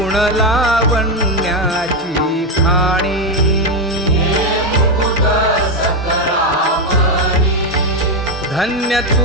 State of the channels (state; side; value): normal; both; correlation 0.08